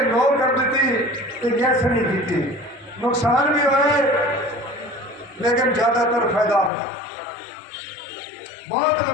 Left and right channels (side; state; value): right; drops out; at 6.7 s